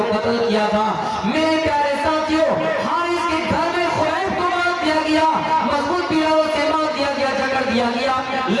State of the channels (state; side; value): identical; both; correlation 1.00